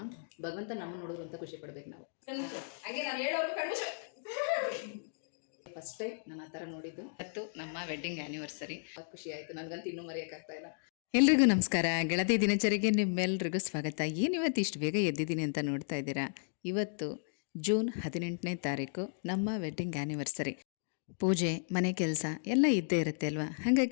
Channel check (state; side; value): silent; right; digital silence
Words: ಭಗವಂತ ನಮ್ಮನ್ನು ನೋಡೋರು ಅಂತ ಖುಷಿ ಪಡ್ಬೇಕು ನಾವು. ಫಸ್ಟ್ ಟೈಮ್ ನಾನು ಆ ಥರ ನೋಡಿದ್ದು ಮತ್ತು ನಮ್ಮ ವೆಡ್ಡಿಂಗ್ ಆ್ಯನಿವರ್ಸರಿ. ಖುಷಿ ಆಯಿತು, ನನಗಂತೂ ಇನ್ನೂ ಮರೆಯೋಕ್ಕಾಗ್ತಾ ಇಲ್ಲ. ಎಲ್ರಿಗೂ ನಮಸ್ಕಾರ. ಗೆಳತಿ ದಿನಚರಿಗೆ ನಿಮ್ಮೆಲ್ರಿಗೂ ಸ್ವಾಗತ. ಇವತ್ತು ಇಷ್ಟು ಬೇಗ ಎದ್ದಿದ್ದೀನಿ ಅಂತ ನೋಡ್ತಾ ಇದ್ದೀರಾ. ಇವತ್ತು ಜೂನ್ 18ನೇ ತಾರೀಕು ನಮ್ಮ ವೆಡ್ಡಿಂಗ್ ಆ್ಯನಿವರ್ಸರಿ. ಪೂಜೆ, ಮನೆ ಕೆಲಸ ಎಲ್ಲ ಇದ್ದೇ ಇರುತ್ತೆ ಅಲ್ವಾ.